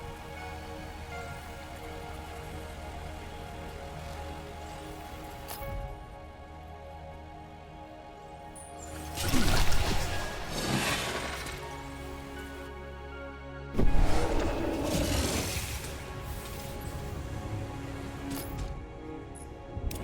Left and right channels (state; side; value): identical; both; correlation 1.00